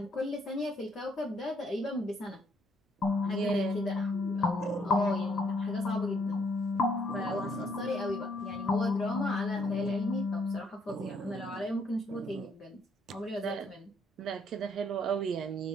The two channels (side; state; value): both; normal; correlation 0.69